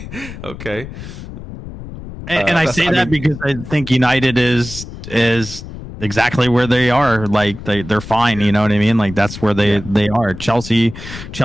And I say that because I think United is exactly where they are. Like they're fine. You know what I mean? Like that's where they are. Chelsea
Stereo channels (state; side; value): noise; left; rumble, 12 dB below the sound